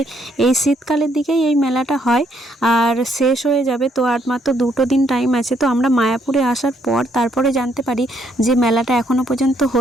এই শীতকালের দিকেই এই মেলাটা হয় আর শেষ হয়ে যাবে। তো আর মাত্র 2 দিন টাইম আছে। তো আমরা মায়াপুরে আসার পর তারপরে জানতে পারি যে মেলাটা এখনও পর্যন্ত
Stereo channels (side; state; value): both; normal; correlation 0.71